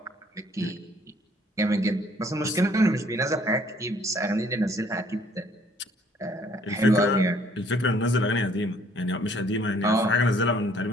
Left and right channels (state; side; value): normal; both; correlation 0.61